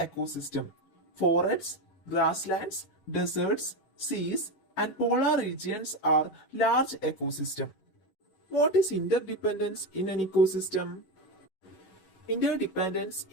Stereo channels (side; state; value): right; late; 11 ms